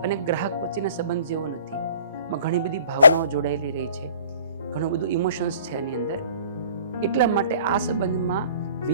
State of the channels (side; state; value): both; inverted; correlation -0.52